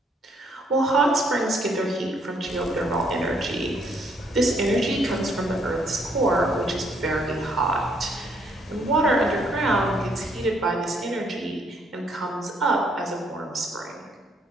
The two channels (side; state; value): both; normal; correlation 0.69